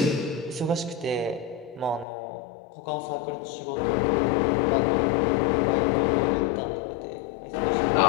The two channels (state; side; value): drops out; right; at 2.1 s